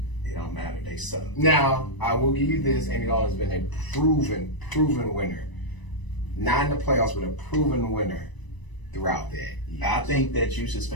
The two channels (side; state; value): right; late; 1.0 ms